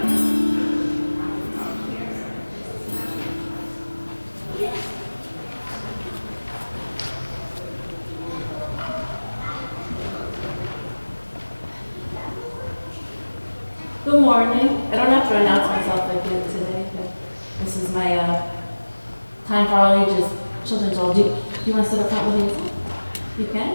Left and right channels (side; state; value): both; inverted; correlation -1.00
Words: Good morning. I don't have to announce myself again today, but this is my time for all ages children's role. Do you want to sit up front with me? You can?